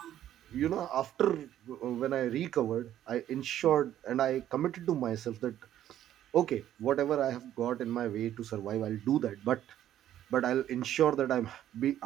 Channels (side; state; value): left; quieter; 11.7 dB